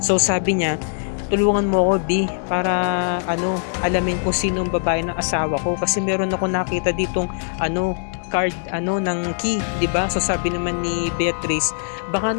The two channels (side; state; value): right; silent; digital silence